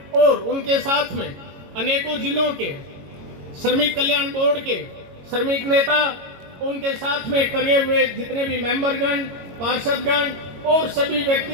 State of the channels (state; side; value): late; left; 22 ms